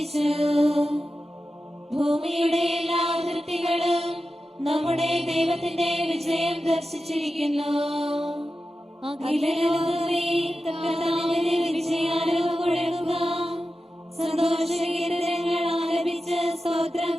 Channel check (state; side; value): normal; both; correlation 0.92